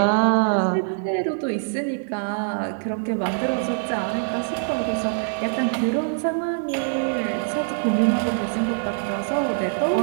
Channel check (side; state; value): left; silent; digital silence